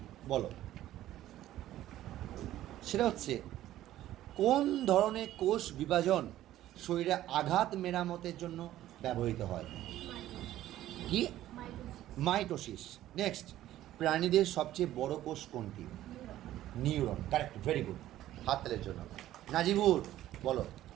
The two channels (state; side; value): quieter; left; 13.7 dB